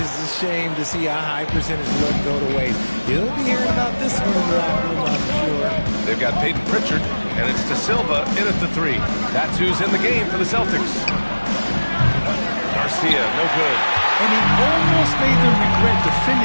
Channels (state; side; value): inverted; both; correlation -1.00